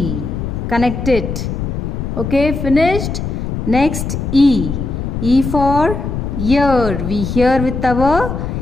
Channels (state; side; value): noise; left; rumble, 4 dB below the sound